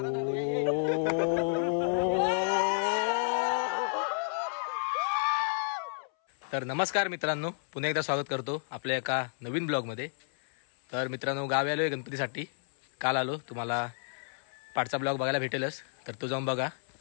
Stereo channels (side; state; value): right; silent; 57 dB below the other